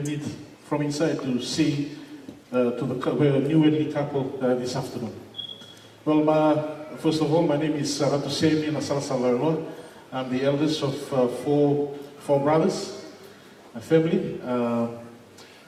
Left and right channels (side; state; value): both; identical; correlation 1.00